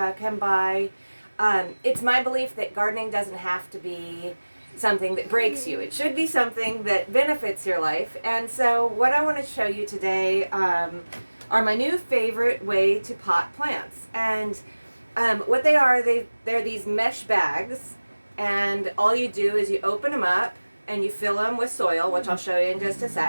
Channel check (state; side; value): inverted; both; correlation -1.00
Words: can buy. It's my belief that gardening doesn't have to be something that breaks you. It should be something that benefits your life. And so what I want to show you today are my new favorite way to pot plants. And what they are, they're these mesh bags, and all you do is you open them up and you fill them with soil, which I'll show you in just a